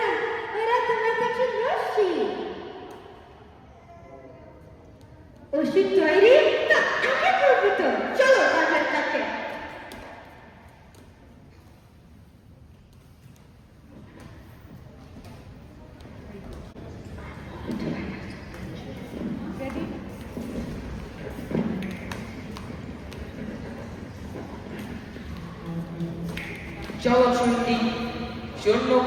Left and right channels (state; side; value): identical; both; correlation 1.00